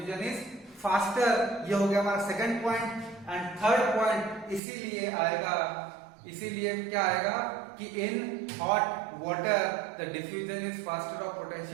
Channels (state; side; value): drops out; left; at 4.6 s